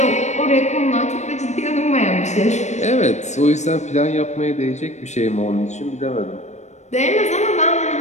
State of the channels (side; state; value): right; late; 0.34 ms